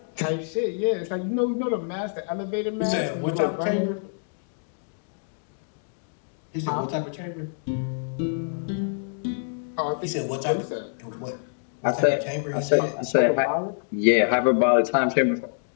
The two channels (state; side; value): silent; right; digital silence